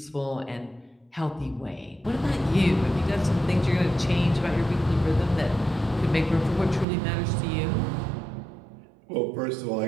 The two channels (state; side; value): drops out; left; at 6.9 s